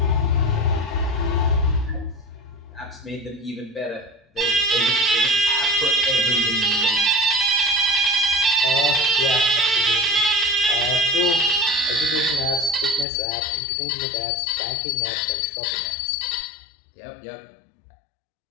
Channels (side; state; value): right; drops out; at 13.1 s